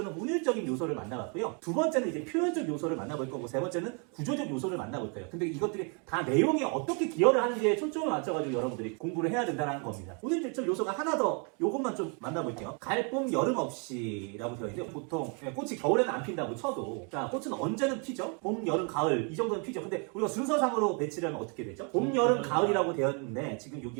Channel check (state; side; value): quieter; left; 36.3 dB